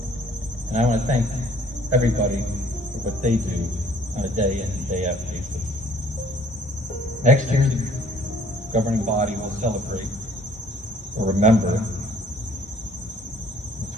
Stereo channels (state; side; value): normal; both; correlation 0.58